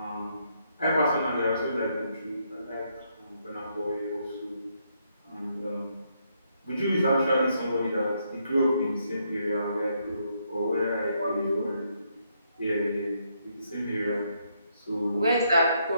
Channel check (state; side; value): inverted; both; correlation -0.75